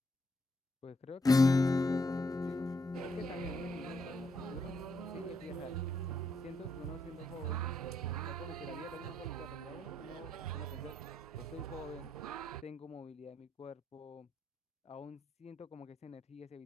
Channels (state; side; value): normal; both; correlation 0.77